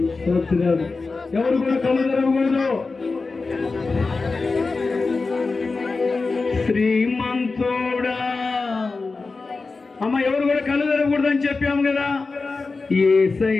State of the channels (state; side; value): quieter; right; 4.0 dB